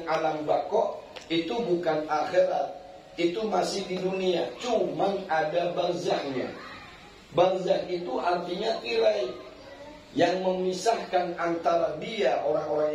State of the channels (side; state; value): both; identical; correlation 1.00